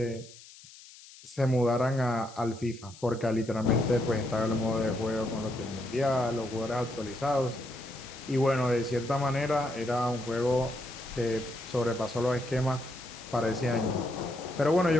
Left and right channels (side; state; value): left; noise; hiss, 20 dB below the sound